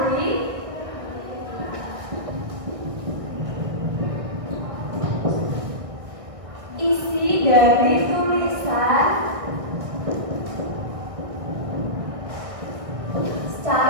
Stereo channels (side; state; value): left; late; 1.6 ms